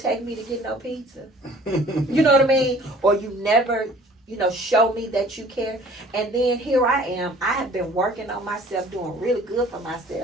me to get no pizza. You know what I mean? Or you never, show me that you care. And then here I am. I have been working on myself, doing really good for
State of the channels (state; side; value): normal; both; correlation 0.52